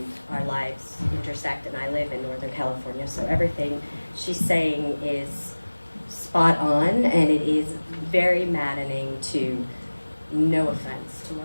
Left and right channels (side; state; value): both; inverted; correlation -1.00